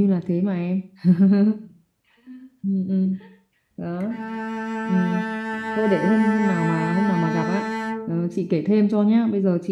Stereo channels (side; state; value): both; identical; correlation 1.00